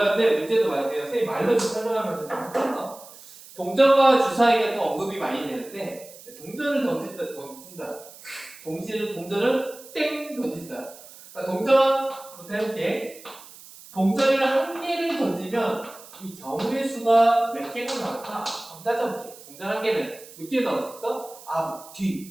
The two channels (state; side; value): noise; right; hiss, 19 dB below the sound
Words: 문제도 말해요. 선생님 말로 좀 설명하면서 좀 할게요. 동전과 주사위가 또 언급이 많이 되는데 동전을 던진다. 동시에 동전을 땡 던진다. 그러니까 동전부터 해볼게. 동전을 한 개를 던지면 이 경우의 수가 몇 개가 나올까? 한번 따져볼게. 동전 한 개는 몇 개 나올 수 있어?